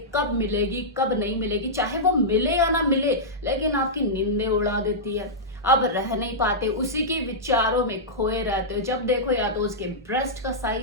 कब मिलेगी कब नहीं मिलेगी, चाहे वो मिले या ना मिले, लेकिन आपकी नींदें उड़ा देती है। अब रह नहीं पाते, उसी के विचारों में खोए रहते हो। जब देखो या तो उसके ब्रेस्ट का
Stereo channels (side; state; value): both; normal; correlation -0.11